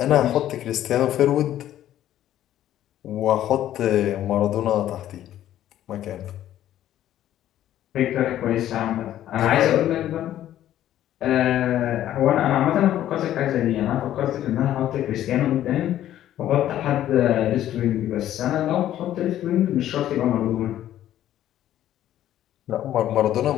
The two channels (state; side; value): quieter; right; 12.3 dB